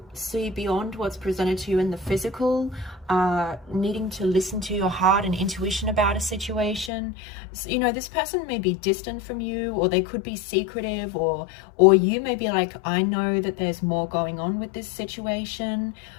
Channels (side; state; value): right; drops out; at 6.9 s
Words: see beyond what's presented to you in the physical, needing to listen to your heart and intuition about a situation. So, you know, this person may be distant from you, or they could be secretive, or you may be like, I know that there's more going on with this situation.